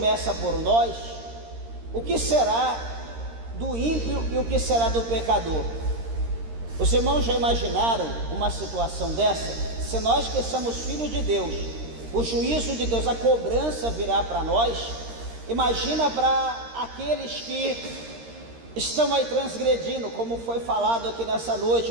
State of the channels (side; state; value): left; late; 13 ms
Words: por nós, o que será do ímpio e o que será do pecador? Os irmãos já imaginaram uma situação dessa? Se nós que somos filhos de Deus, o juízo de Deus, a cobrança virá para nós. Imagina para aqueles que estão aí transgredindo, como foi falado aqui nessa